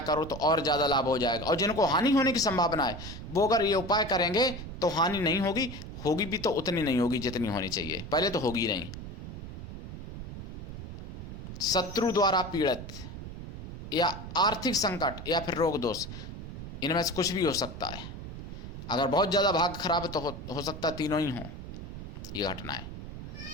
करो तो और ज़्यादा लाभ हो जाएगा। और जिनको हानि होने की संभावना है वो अगर ये उपाय करेंगे तो हानि नहीं होगी, होगी भी तो उतनी नहीं होगी जितनी होनी चाहिए, पहले तो होगी नहीं। शत्रु द्वारा पीड़ित या आर्थिक संकट या फिर रोग दोष, इनमें से कुछ भी हो सकता है। अगर बहुत ज़्यादा भाग्य खराब है तो हो सकता है तीनों ही हों ये घटनाएं।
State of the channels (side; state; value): right; noise; rumble, 9 dB below the sound